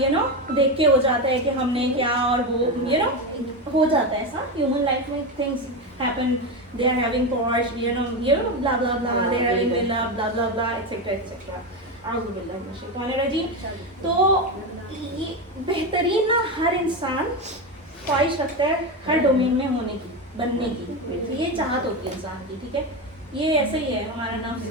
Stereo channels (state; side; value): normal; both; correlation 0.15